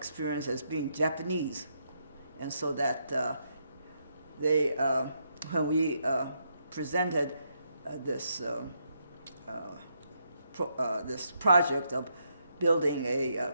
as being Japanese, and so that they when we presented this project of building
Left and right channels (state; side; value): inverted; both; correlation -0.78